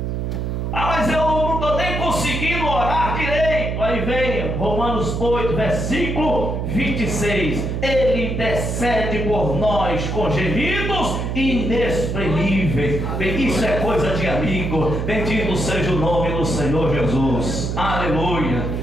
Ah, mas eu não estou nem conseguindo orar direito. Aí vem Romanos 8, versículo 26. Ele intercede por nós com gemidos inexprimíveis. Isso é coisa de amigo. Bendito seja o nome do Senhor Jesus. Aleluia.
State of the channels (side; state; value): right; noise; hum, 2 dB below the sound